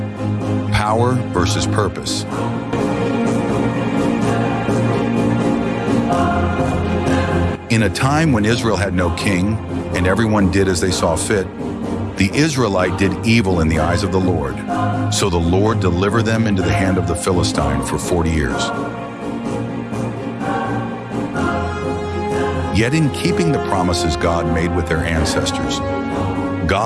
power versus purpose. In a time when Israel had no king and everyone did as they saw fit, the Israelite did evil in the eyes of the Lord. So the Lord delivered them into the hand of the Philistine for 40 years. Yet in keeping the promises God made with their ancestors,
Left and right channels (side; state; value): both; identical; correlation 1.00